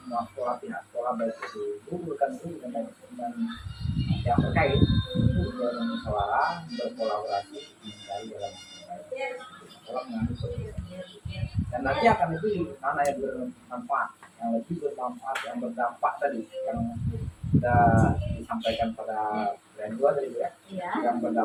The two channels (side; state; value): both; identical; correlation 1.00